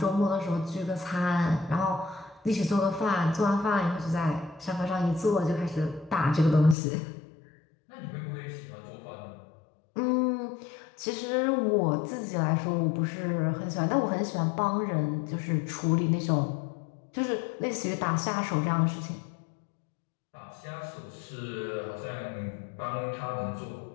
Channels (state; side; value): drops out; right; at 6.8 s